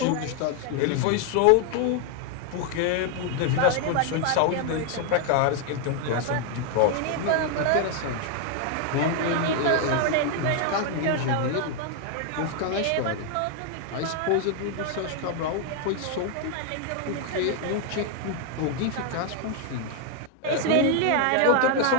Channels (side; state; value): both; different; correlation 0.00